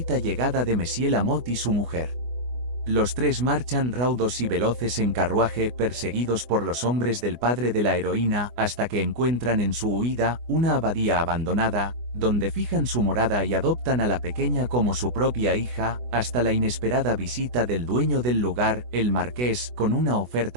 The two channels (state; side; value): late; left; 24 ms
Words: llegada de Monsieur Lamotte y su mujer. Los 3 marchan raudos y veloces en carruaje, perseguidos por los hombres del padre de la heroína, hasta que encuentran en su huida una abadía abandonada, donde fijan su morada y adoptan a la pequeña como su propia hija, hasta la inesperada visita del dueño del lugar, el marqués, con una